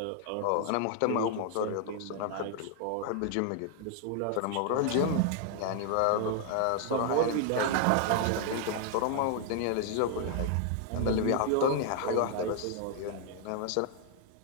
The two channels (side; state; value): both; different; correlation 0.00